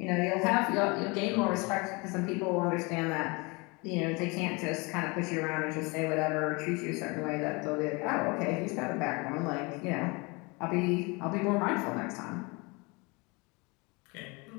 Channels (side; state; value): right; quieter; 27.8 dB